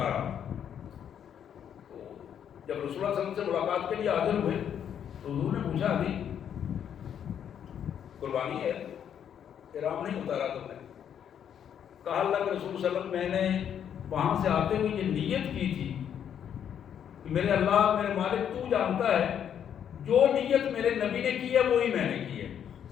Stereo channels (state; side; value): quieter; right; 8.9 dB